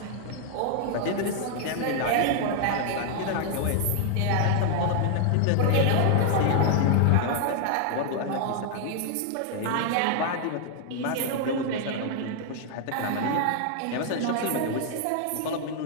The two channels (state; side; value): different; both; correlation 0.00